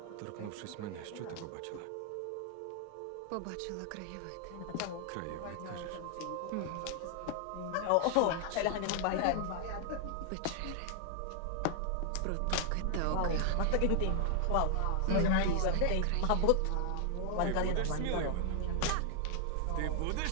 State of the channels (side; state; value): both; different; correlation 0.00